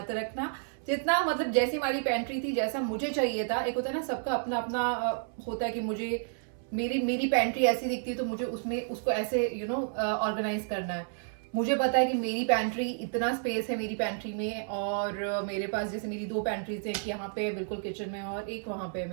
रखना, जितना मतलब जैसी हमारी पेंट्री थी, जैसा मुझे चाहिए था, एक होता है ना सबका अपना अपना होता है कि मुझे मेरी पेंट्री ऐसी दिखती है तो मुझे उसमें उसको ऐसे यू नो ऑर्गेनाइज करना है। मुझे पता है कि मेरी पेंट्री इतना स्पेस है मेरी पेंट्री में, और मेरे पास जैसे मेरी 2 पेंट्रीज है, एक यहाँ पे बिल्कुल किचन में और एक वहाँ पे है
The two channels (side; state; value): left; silent; 57 dB below the other